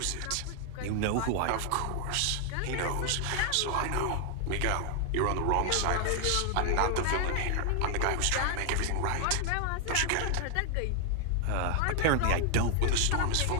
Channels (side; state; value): both; different; correlation 0.00